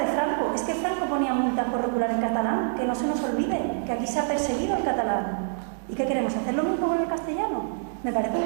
Franco. Es que Franco ponía multas por regular en catalán, que no se nos olvide, que aquí se ha perseguido el catalán. ¿Y qué queremos? ¿Hacer lo mismo con el castellano? Me parece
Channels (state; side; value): silent; left; digital silence